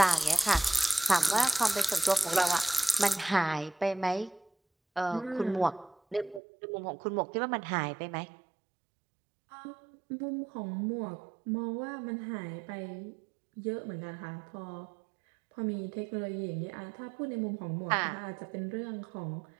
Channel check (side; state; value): left; drops out; at 6.4 s